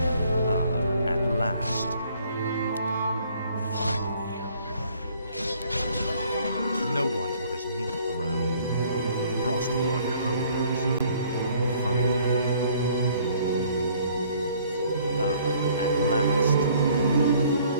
At last. Finally. No one orders me around. Frostborn hungers. Finally. At last.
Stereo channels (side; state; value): both; inverted; correlation -0.60